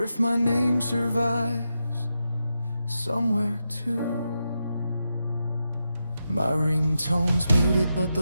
if my name survives somewhere too. My ringtone's muted, but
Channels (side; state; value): both; inverted; correlation -0.87